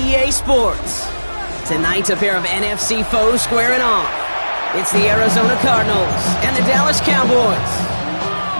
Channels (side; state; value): both; inverted; correlation -1.00